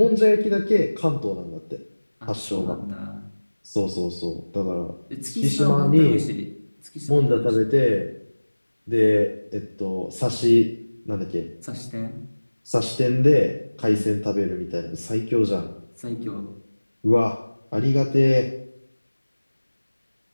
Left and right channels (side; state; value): both; inverted; correlation -1.00